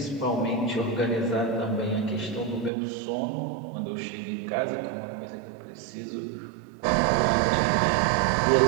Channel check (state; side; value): drops out; left; at 2.7 s